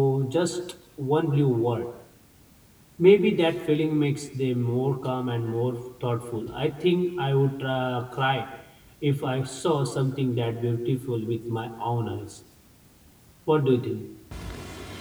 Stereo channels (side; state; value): both; identical; correlation 1.00